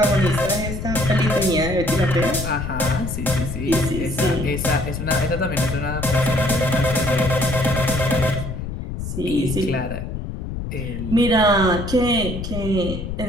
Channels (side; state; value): left; noise; rumble, 6 dB below the sound